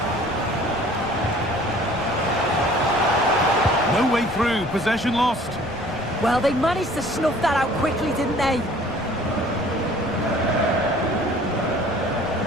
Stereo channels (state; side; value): noise; left; rumble, 15 dB below the sound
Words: No way through, possession lost. Well, they managed to snuff that out quickly, didn't they?